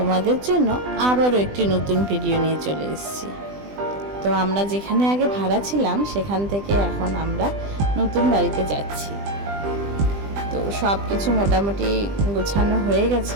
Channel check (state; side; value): late; left; 20 ms